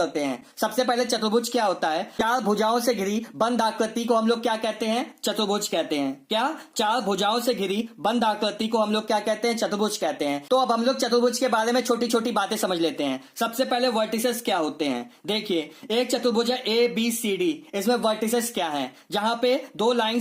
हैं। सबसे पहले चतुर्भुज क्या होता है? चार भुजाओं से घिरी बंद आकृति को हम लोग क्या कहते हैं? चतुर्भुज कहते हैं। क्या? चार भुजाओं से घिरी बंद आकृति को हम लोग क्या कहते हैं? चतुर्भुज कहते हैं। तो अब हम लोग चतुर्भुज के बारे में छोटी छोटी बातें समझ लेते हैं। सबसे पहले वर्टिसेस क्या होते हैं? देखिए, एक चतुर्भुज है ए बी सी डी, इसमें वर्टिसेस क्या है? जहां पे दो लाइन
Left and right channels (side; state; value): both; identical; correlation 1.00